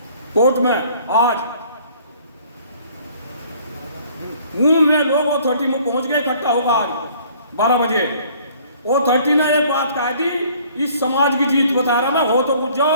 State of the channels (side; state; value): both; inverted; correlation -0.56